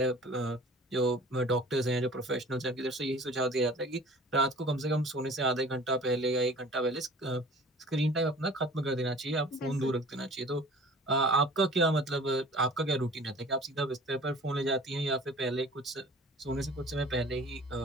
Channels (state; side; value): normal; both; correlation 0.46